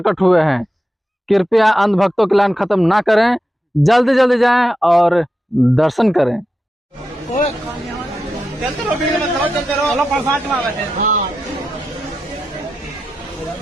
हुए हैं। कृपया अंधभक्तों की लाइन खत्म ना करें, जल्दी जल्दी जाएं और दर्शन करें। चलते रहो, भीड़ में चलते रहो। चलो प्रसाद में बैठे। हाँ।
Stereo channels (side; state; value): both; normal; correlation 0.89